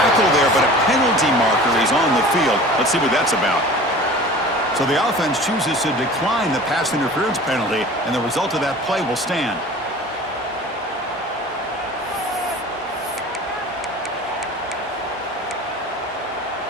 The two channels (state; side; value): normal; both; correlation 0.41